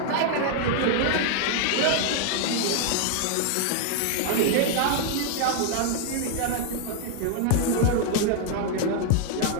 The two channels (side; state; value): both; different; correlation 0.00